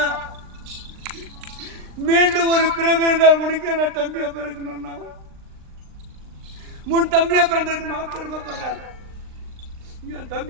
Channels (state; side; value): late; left; 39 ms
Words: மீண்டும் ஒரு பிறகு இருந்தால் முடிக்க நான் தம்பியா பிறக்கணும்னா முன் தம்பியா பிறந்ததுக்கு நான் பெருமைப்படுறேன். என்